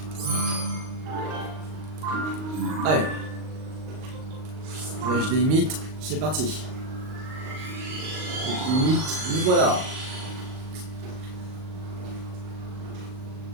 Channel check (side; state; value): left; late; 38 ms